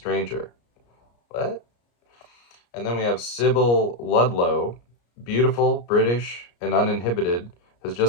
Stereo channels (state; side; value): late; right; 34 ms